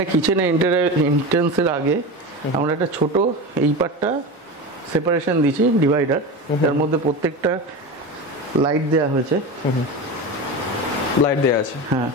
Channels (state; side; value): normal; both; correlation 0.25